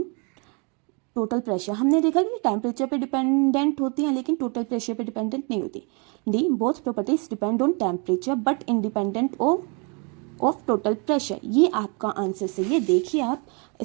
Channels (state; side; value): quieter; left; 34.2 dB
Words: total pressure. हमने देखा कि टेम्परेचर पे डिपेंडेंट होती हैं लेकिन टोटल प्रेशर पे डिपेंडेंट नहीं होती। D, both properties depend on temperature but independent of total pressure. ये आपका आंसर सही है। देखिए आप,